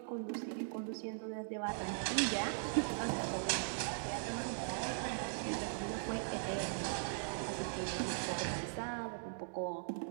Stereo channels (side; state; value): left; silent; digital silence